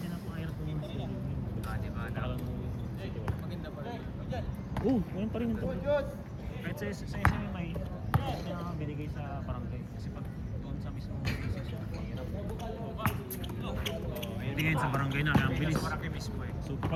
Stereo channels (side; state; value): both; identical; correlation 1.00